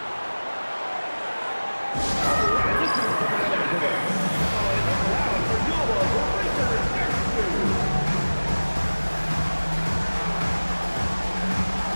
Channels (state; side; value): inverted; both; correlation -1.00